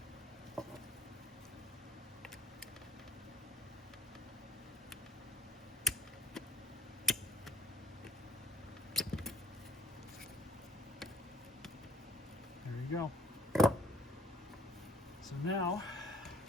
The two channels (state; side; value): normal; both; correlation 0.57